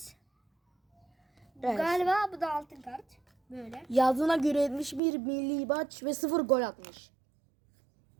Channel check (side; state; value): left; drops out; at 5.0 s